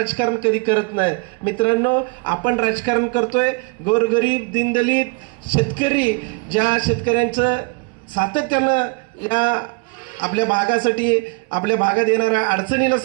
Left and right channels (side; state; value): left; quieter; 32.0 dB